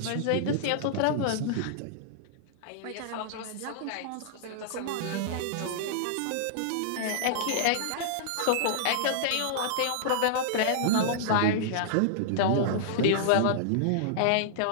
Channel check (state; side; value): different; both; correlation -0.02